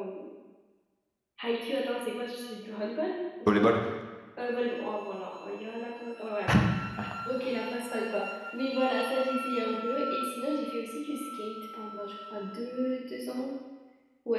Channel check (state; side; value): identical; both; correlation 1.00